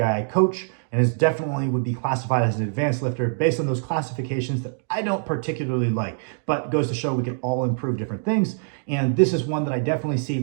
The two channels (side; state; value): left; silent; digital silence